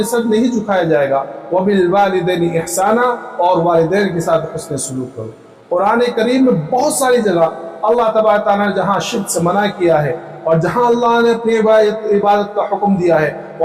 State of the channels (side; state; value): both; identical; correlation 1.00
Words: سر نہیں جھکایا جائے گا، وَبِالْوَالِدَيْنِ إِحْسَانًا اور والدین کے ساتھ حسن سلوک کرو۔ قرآن کریم میں بہت ساری جگہ اللہ تبارک تعالیٰ نے جہاں شرک سے منع کیا ہے اور جہاں اللہ نے اپنی عبادت کا حکم دیا ہے